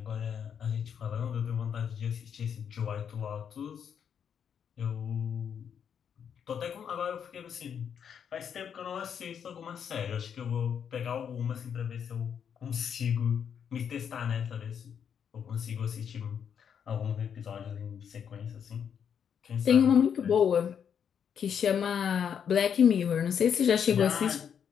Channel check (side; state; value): right; quieter; 7.8 dB